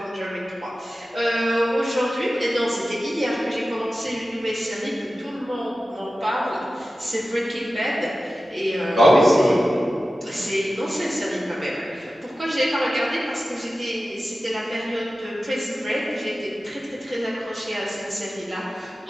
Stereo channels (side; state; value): both; normal; correlation 0.94